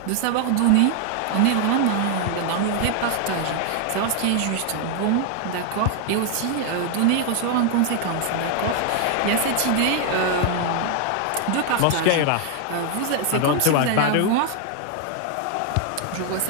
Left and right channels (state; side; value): different; both; correlation 0.00